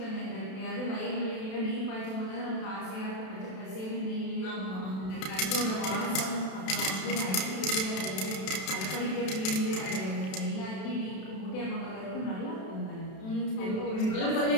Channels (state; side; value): late; right; 32 ms